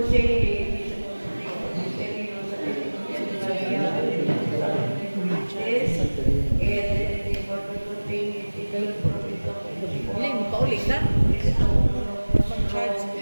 Ministerio sa Pilipinas, and for the contained legal provision. Hindi mo paulit na. Mag-charge.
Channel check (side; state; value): both; inverted; correlation -1.00